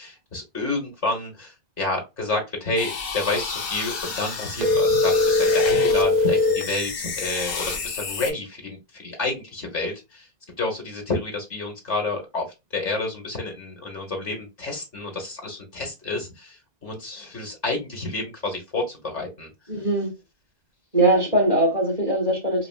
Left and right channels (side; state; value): left; late; 2.0 ms